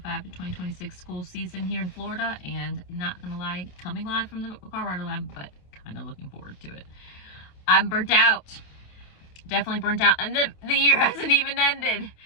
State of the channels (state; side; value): late; right; 28 ms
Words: to 2026 school season here in Florida, and not gonna lie, coming live from the Colorado lab, but kind of looking forward to it. I'm burnt out. Definitely burnt out, and the year hasn't even ended.